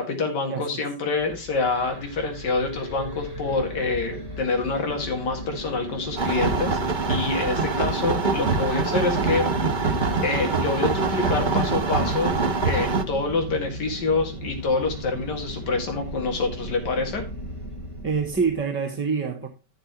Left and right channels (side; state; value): right; late; 5.2 ms